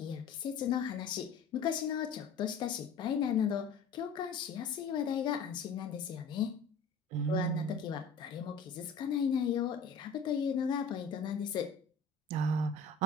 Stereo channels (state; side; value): quieter; right; 4.6 dB